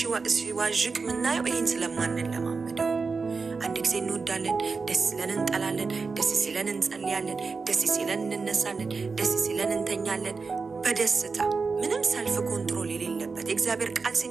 ሲዋዥቅ ምናየው ይሄን ስለማንለማመደው። አንድ ጊዜ እንወዳለን፣ ደስ ሲለን እንጠላለን፣ ደስ ሲለን እንጸልያለን፣ ደስ ሲለን እንነሳለን፣ ደስ ሲለን እንተኛለን በደስታ ምንም ሰልፍ ኮንትሮል የሌለበት። የእግዚአብሔር ቃል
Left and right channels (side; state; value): left; quieter; 4.6 dB